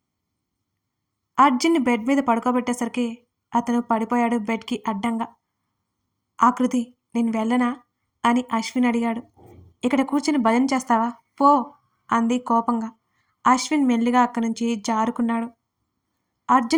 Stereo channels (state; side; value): identical; both; correlation 1.00